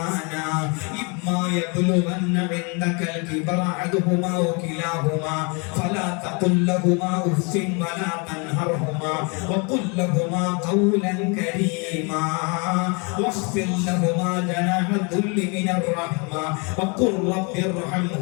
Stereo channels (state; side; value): quieter; right; 32.6 dB